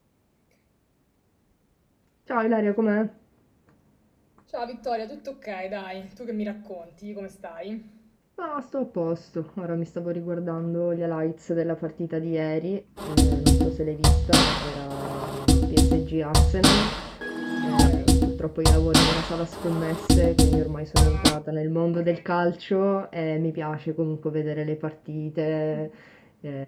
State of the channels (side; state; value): both; identical; correlation 1.00